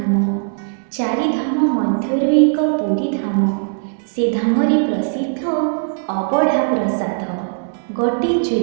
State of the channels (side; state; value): left; silent; 67 dB below the other